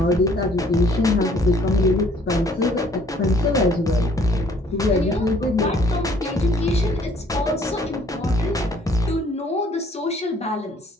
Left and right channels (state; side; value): normal; both; correlation 0.60